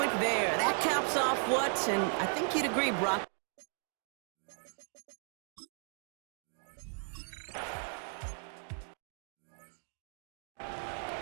there. That caps off what? And I think you'd agree, Brock.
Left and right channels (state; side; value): silent; left; 54 dB below the other